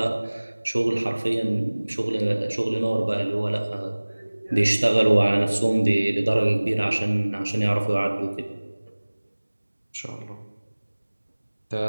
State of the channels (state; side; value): inverted; both; correlation -1.00